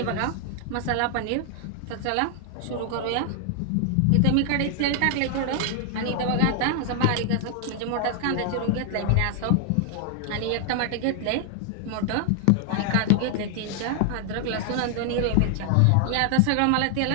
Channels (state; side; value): different; both; correlation 0.00